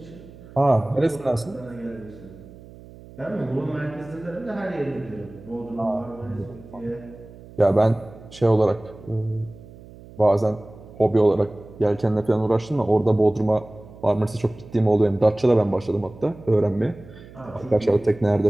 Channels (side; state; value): right; noise; hum, 19 dB below the sound